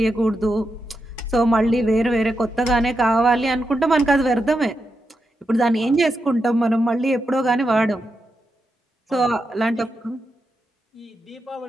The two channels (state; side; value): normal; both; correlation 0.86